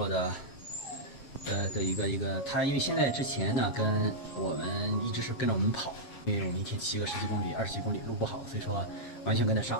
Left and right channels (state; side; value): late; right; 7.4 ms